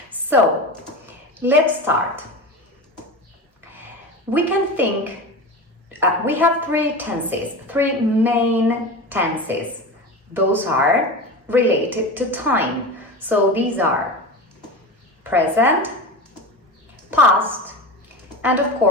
So let's start. We can think, we have three tenses, three main tenses. Those are related to time. So these are present, past, and of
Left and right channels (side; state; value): both; normal; correlation 0.27